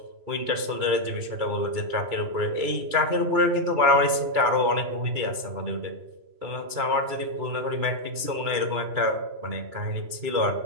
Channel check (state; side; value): late; left; 3.0 ms